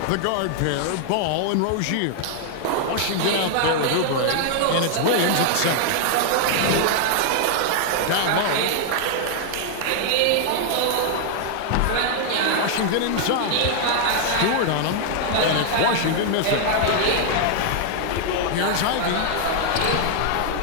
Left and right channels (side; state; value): both; different; correlation 0.00